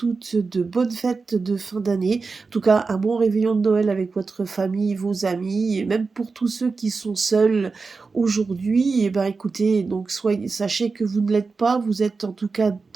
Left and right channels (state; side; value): quieter; left; 4.4 dB